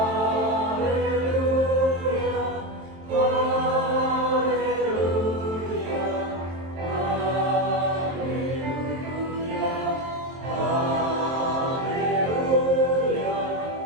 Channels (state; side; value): late; left; 23 ms